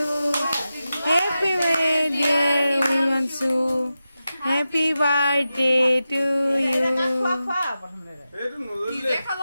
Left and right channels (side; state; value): both; inverted; correlation -0.92